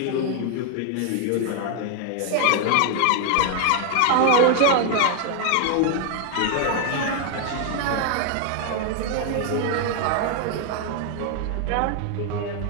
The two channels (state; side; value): different; both; correlation 0.00